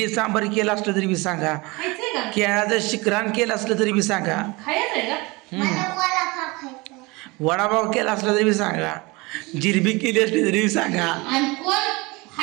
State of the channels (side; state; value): left; quieter; 24.6 dB